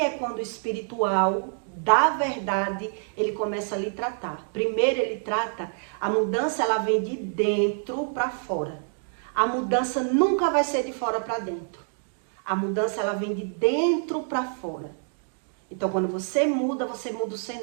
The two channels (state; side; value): silent; left; 60 dB below the other